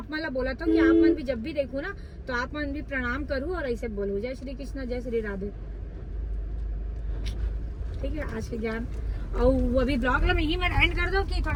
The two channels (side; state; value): both; identical; correlation 1.00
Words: मतलब बोला था कि आप मन भी जब भी देखो ना तो आप मन भी प्रणाम करूँ और ऐसे बोलो जय श्री कृष्ण जय श्री राधे, ठीक है। आज के ज्ञान और वो अभी ब्लॉग में यही मैं एंड कर दूं कि